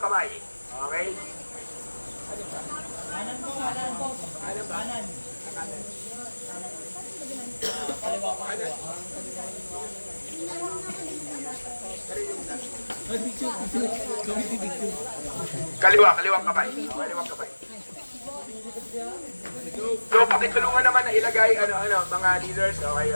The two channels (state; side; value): inverted; both; correlation -1.00